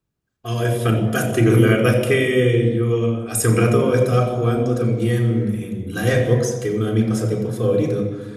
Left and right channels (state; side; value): identical; both; correlation 1.00